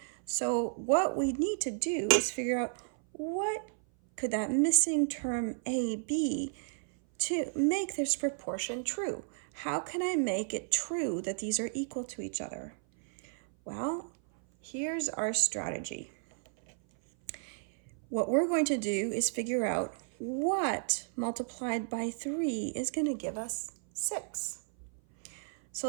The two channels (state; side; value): silent; left; 56 dB below the other